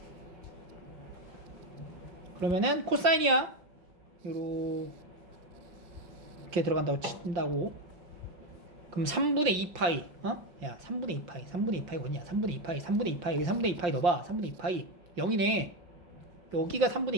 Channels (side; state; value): left; late; 5.7 ms